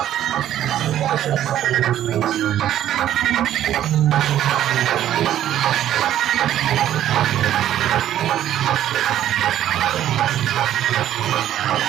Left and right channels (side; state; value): left; quieter; 11.8 dB